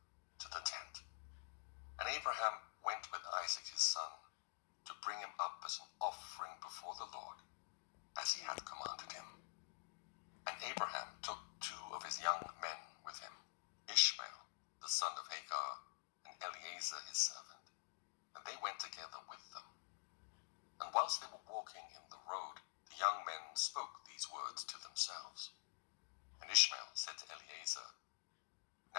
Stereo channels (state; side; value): silent; right; digital silence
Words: to the tent. And Abraham went with Isaac his son, to bring him up as an offering before the Lord, as he had commanded him. And Abraham took 2 of his young men with him, Ishmael, the son of Hagar, and Eliezer his servant, and they went together with them. And whilst they were walking in the road, the young men spoke these words to themselves. And Ishmael said to Eliezer,